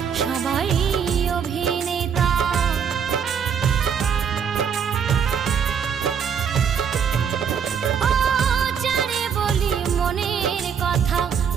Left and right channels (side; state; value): left; quieter; 7.3 dB